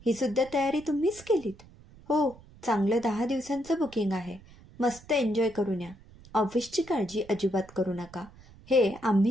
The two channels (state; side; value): noise; right; rumble, 22 dB below the sound